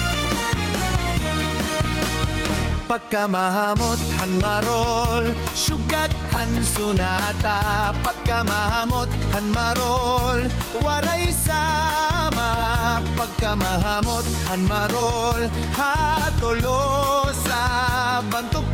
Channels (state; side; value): identical; both; correlation 1.00